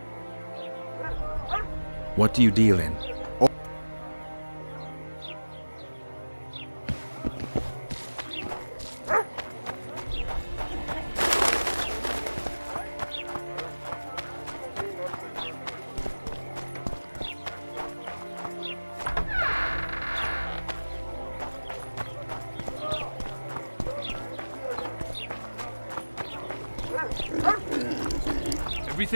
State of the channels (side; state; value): both; inverted; correlation -1.00